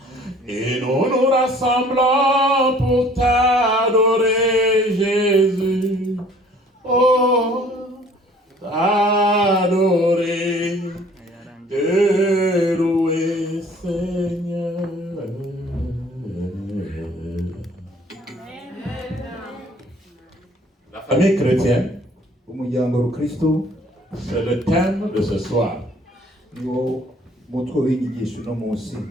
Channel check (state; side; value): normal; both; correlation 0.55